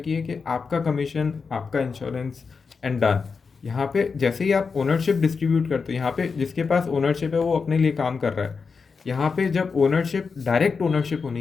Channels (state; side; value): quieter; right; 5.1 dB